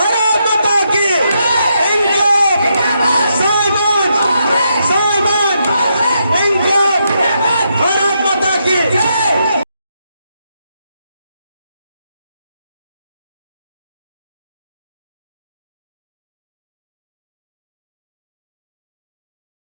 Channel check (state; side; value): inverted; both; correlation -0.80